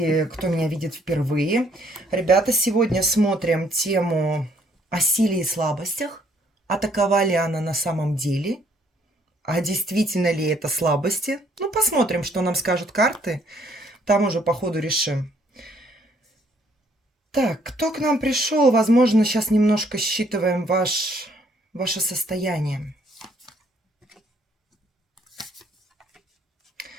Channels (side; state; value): both; normal; correlation 0.66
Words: кто меня видит впервые. Ребята, сегодня смотрим тему о силе и слабостях. А такова ли она на самом деле? А действительно ли это слабости? Ну, посмотрим, что нам скажут карты. Там уже по ходу решим. Так, кто к нам пришел? Возможно, сейчас немножко считываем ваше состояние.